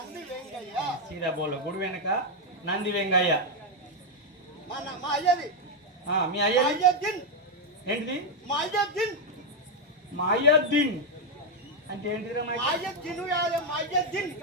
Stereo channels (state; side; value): normal; both; correlation 0.02